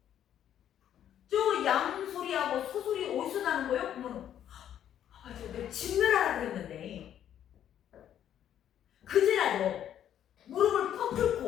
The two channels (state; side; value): quieter; right; 10.4 dB